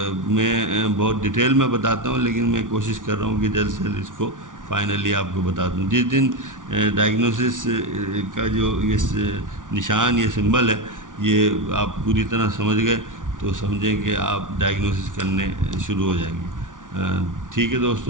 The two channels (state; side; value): late; left; 0.88 ms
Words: میں بہت ڈیٹیل میں بتاتا ہوں، لیکن میں کوشش کر رہا ہوں کہ جلد سے جلد اس کو فائنلی آپ کو بتا دوں. جس دن ڈائگنوسس کا جو یہ نشان، یہ سمبل ہے، یہ آپ پوری طرح سمجھ گئے تو سمجھیں کہ آپ ڈائگنوسس کرنے شروع ہو جائیں گے. ٹھیک ہے